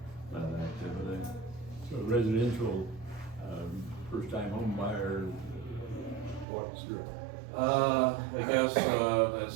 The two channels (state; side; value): drops out; left; at 6.5 s